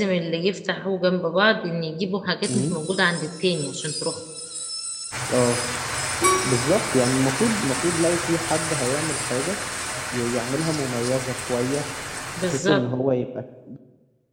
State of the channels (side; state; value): both; identical; correlation 1.00